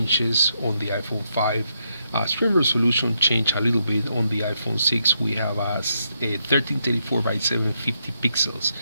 on the iPhone 5. Screen resolution changed a little bit. On the iPhone 6 we have a 1334 by 750 pixels,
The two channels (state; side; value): inverted; both; correlation -0.79